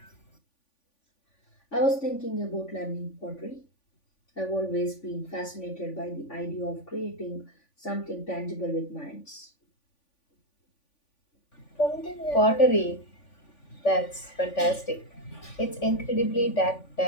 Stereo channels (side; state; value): right; late; 3.5 ms